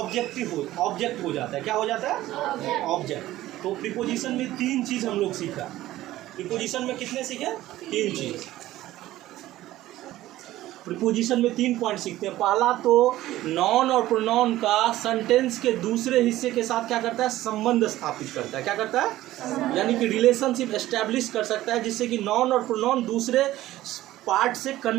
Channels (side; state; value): left; quieter; 15.4 dB